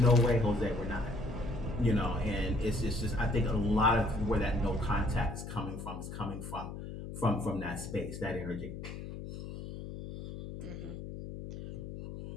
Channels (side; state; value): left; noise; hum, 9 dB below the sound